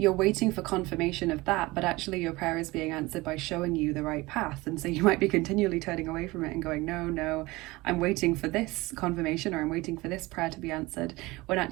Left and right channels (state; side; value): quieter; left; 21.3 dB